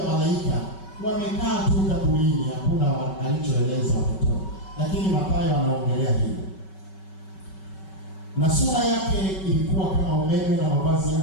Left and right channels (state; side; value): late; right; 5.3 ms